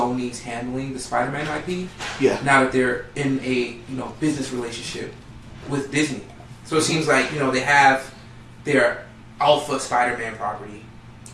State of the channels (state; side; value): identical; both; correlation 1.00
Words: handling the Spider-Man IP. Yeah. Now that they're in a business relationship with Disney, so it seems like they have their alpha Spider-Man property,